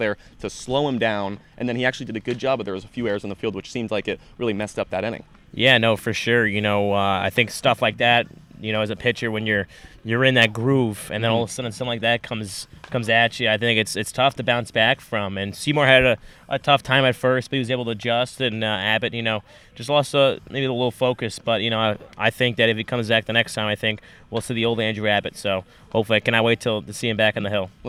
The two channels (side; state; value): both; identical; correlation 1.00